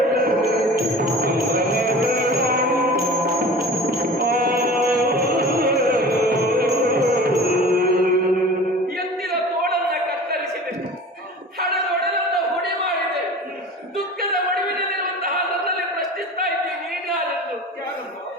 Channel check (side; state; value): both; normal; correlation 0.39